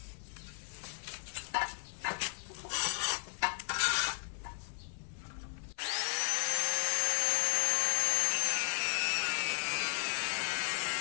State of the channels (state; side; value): silent; right; 54 dB below the other